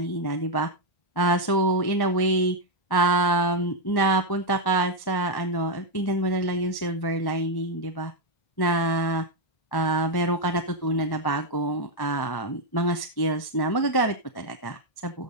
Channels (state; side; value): late; right; 1.1 ms